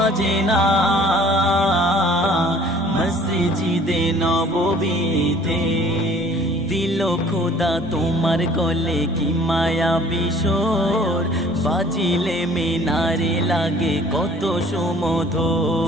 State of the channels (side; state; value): both; normal; correlation 0.52